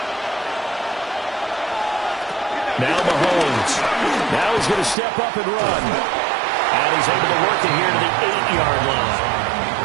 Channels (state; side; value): drops out; left; at 5.0 s